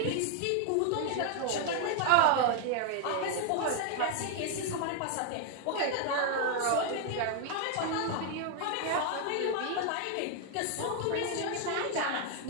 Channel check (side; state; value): both; different; correlation 0.00